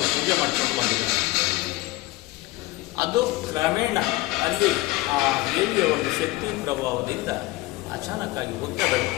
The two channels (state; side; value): quieter; right; 19.5 dB